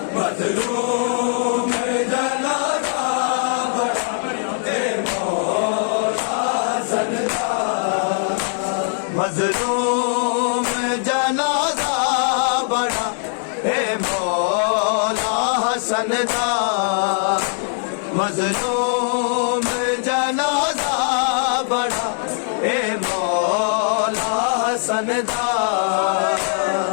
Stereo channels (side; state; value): right; silent; 65 dB below the other